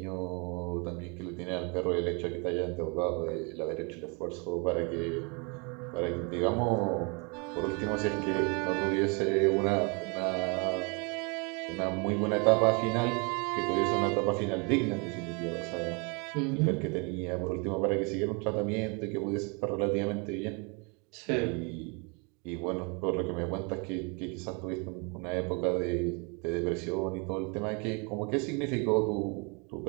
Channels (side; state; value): left; quieter; 32.6 dB